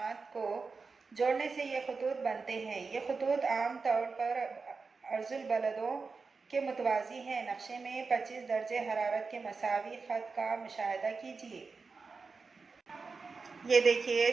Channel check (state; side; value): quieter; left; 4.6 dB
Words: को जोड़ने से ये खतूत बनते हैं। ये खतूत आम तौर पर अर्जुल बलदों के मुतवाज़ी हैं। नक्शे में 25 दर्जे हरारत के मसावी ख़त का मुशाहिदा कीजिए। ये देखिए